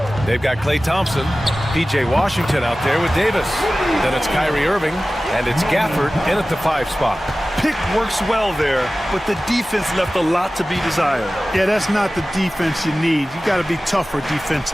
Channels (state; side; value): normal; both; correlation 0.96